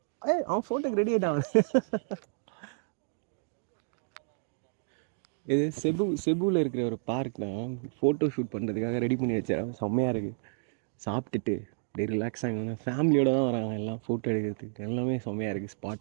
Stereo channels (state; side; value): silent; left; digital silence